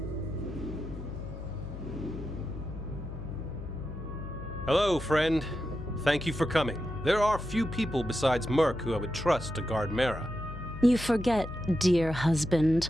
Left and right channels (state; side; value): noise; left; hum, 10 dB below the sound